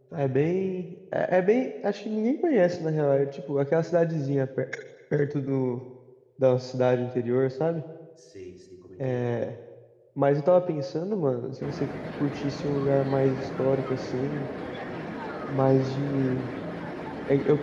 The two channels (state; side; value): identical; both; correlation 1.00